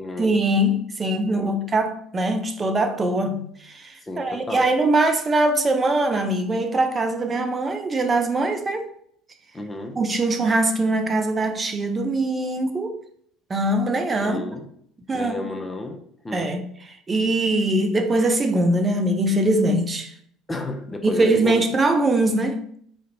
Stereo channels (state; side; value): normal; both; correlation 0.69